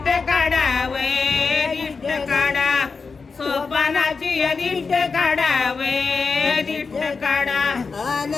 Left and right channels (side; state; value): right; quieter; 4.8 dB